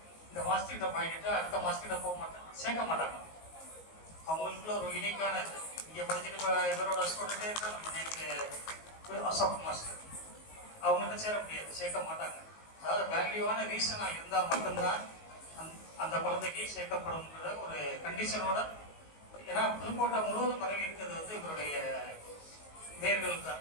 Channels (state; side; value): late; right; 19 ms